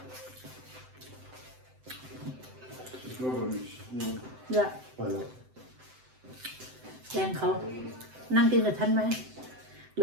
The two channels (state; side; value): late; left; 7.8 ms